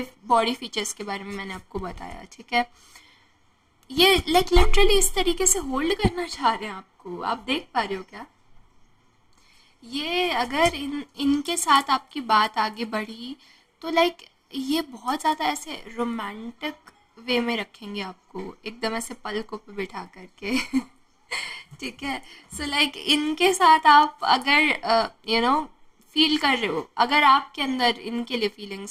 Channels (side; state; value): both; identical; correlation 1.00